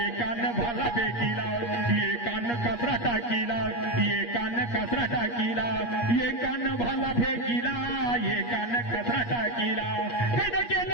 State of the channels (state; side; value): late; right; 8.4 ms